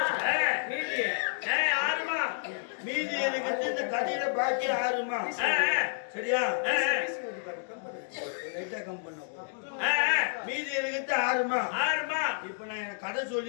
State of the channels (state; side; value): silent; right; digital silence